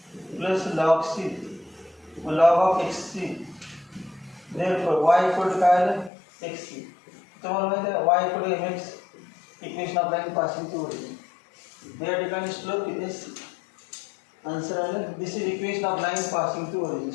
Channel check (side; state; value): right; drops out; at 6.1 s